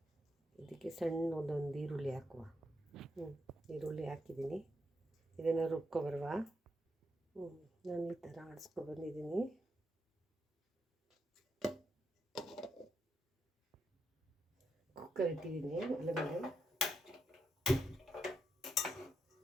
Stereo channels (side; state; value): both; normal; correlation 0.82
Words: ಇದಕ್ಕೆ ಸಣ್ಣ ಒಂದೊಂದು ಈರುಳ್ಳಿ ಹಾಕುವ. ಈರುಳ್ಳಿ ಹಾಕಿದ್ದೀನಿ. ಇದನ್ನು ರುಬ್ಕೊಬರುವ. ನಾನು ಈ ಥರ ಆಡಿಸ್ಕೊಬಂದಿದ್ದೀನಿ. ಕುಕ್ಕರ್ ಇಟ್ಟಿದ್ದೀನಿ ಒಳಗಡೆ.